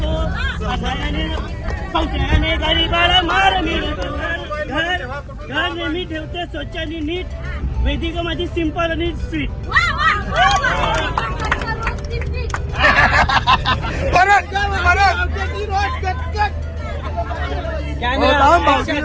संशयाने गरीबाला मार मिळतो. घर नेहमी ठेवते स्वच्छ आणि नीट वेदिका माझी सिंपल आणि स्वीट.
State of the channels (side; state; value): both; identical; correlation 1.00